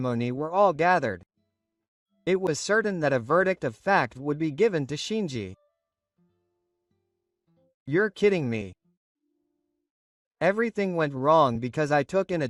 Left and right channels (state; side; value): identical; both; correlation 1.00